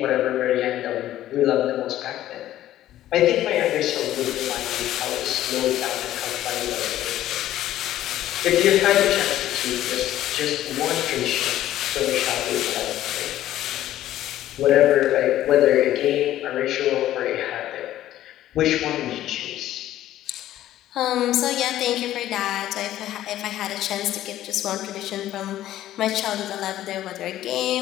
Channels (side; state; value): right; quieter; 13.3 dB